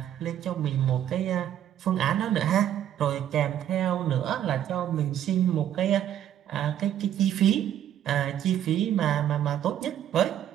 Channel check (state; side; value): quieter; left; 10.7 dB